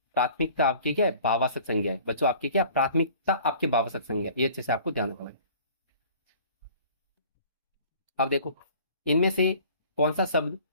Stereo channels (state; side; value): inverted; both; correlation -0.49